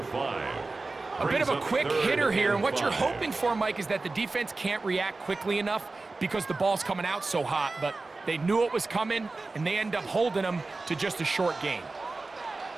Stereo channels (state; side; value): quieter; left; 3.5 dB